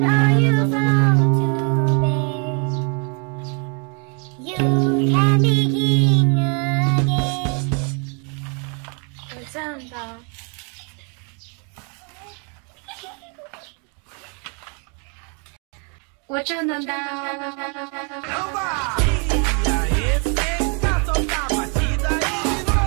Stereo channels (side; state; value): left; quieter; 36.9 dB